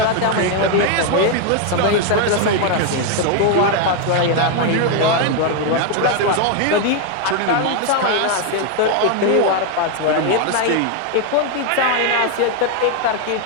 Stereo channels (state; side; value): different; both; correlation 0.01